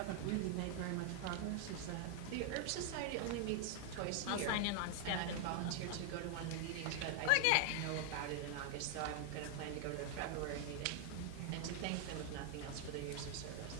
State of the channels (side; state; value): both; different; correlation 0.00